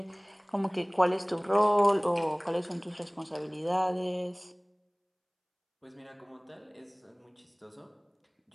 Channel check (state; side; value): identical; both; correlation 1.00